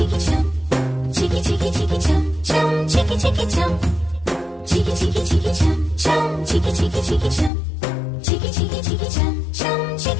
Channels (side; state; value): right; drops out; at 7.5 s